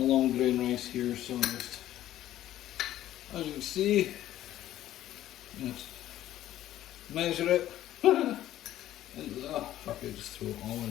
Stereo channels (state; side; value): quieter; right; 13.3 dB